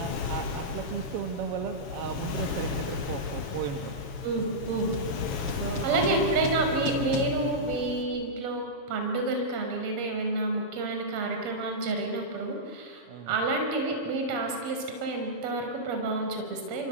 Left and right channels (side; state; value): left; late; 7.2 ms